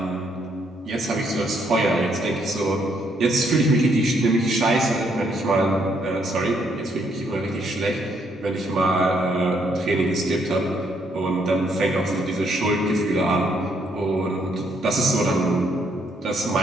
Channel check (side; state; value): both; normal; correlation 0.72